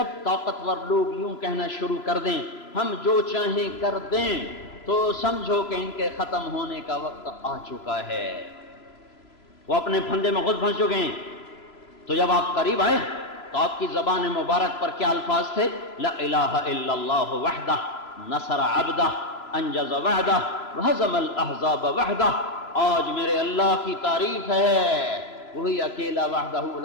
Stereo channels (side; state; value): right; late; 3.0 ms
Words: طاقتور لوگ یوں کہنا شروع کر دیں ہم جو چاہیں کر دیں تو سمجھو کہ ان کے ختم ہونے کا وقت آ چکا ہے. وہ اپنے پھندے میں خود پھنس چکے ہیں. تو جب آپ قریب آئے تو آپ کی زبان مبارک پر کیا الفاظ تھے؟ لا الہ الا اللہ وحدہ نصر عبدہ انجز وعدہ وہزم الاحزاب وحدہ. آج میرے اللہ کی تعریف ہے، وہی اکیلا وحدہ